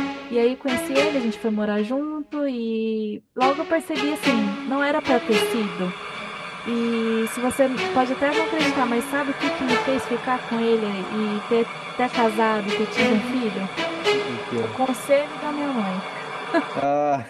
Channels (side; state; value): both; identical; correlation 1.00